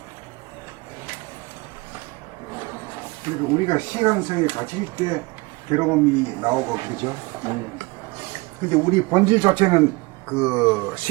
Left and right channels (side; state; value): left; quieter; 25.1 dB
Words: 그리고 우리가 시간성이 가질 때 괴로움이 나오고 그러죠. 근데 우리 본질 자체는 그